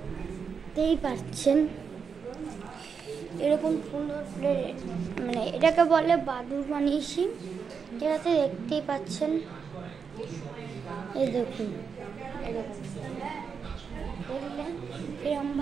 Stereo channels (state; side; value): quieter; left; 6.1 dB